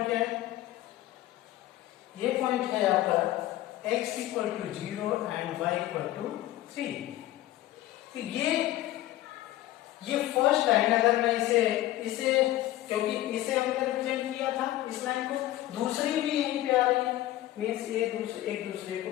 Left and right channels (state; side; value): quieter; right; 15.0 dB